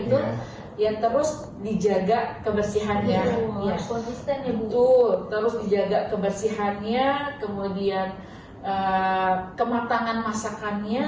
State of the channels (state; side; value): identical; both; correlation 1.00